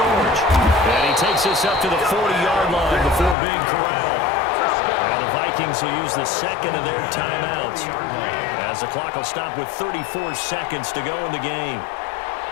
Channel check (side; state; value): right; drops out; at 3.4 s